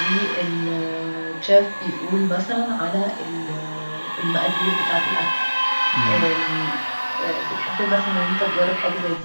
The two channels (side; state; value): both; inverted; correlation -1.00